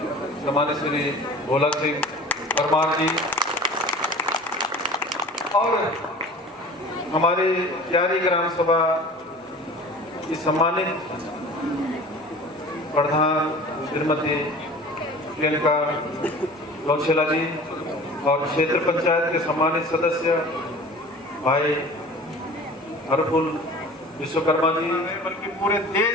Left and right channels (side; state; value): both; normal; correlation 0.42